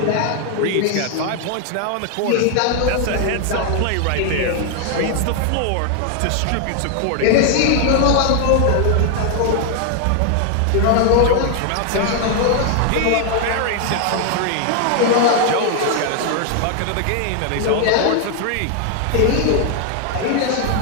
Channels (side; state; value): both; different; correlation 0.00